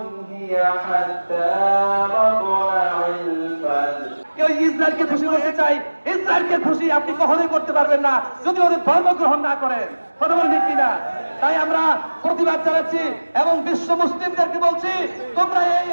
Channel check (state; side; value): inverted; both; correlation -1.00